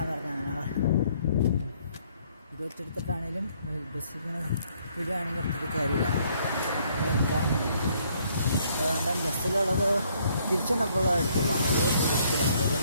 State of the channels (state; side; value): inverted; both; correlation -0.66